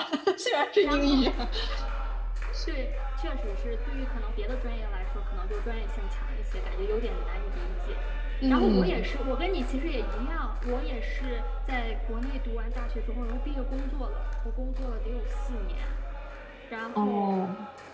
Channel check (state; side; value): identical; both; correlation 1.00